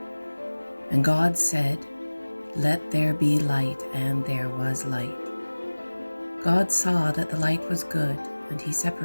And God said, "Let there be light," and there was light. God saw that the light was good, and he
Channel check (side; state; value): both; inverted; correlation -1.00